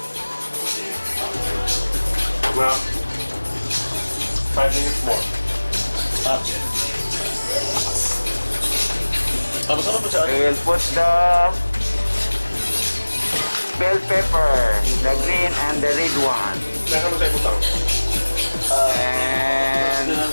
Well, 5 minutes more. Sama pa siya. We will put the bell pepper, the green and the red one. Nasa mo tayo putang? And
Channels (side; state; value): both; inverted; correlation -1.00